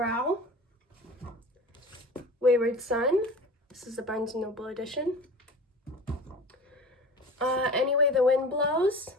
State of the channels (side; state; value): both; normal; correlation 0.37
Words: Wayward Son. This is the Barnes & Noble edition. Anyway the Wind Blows.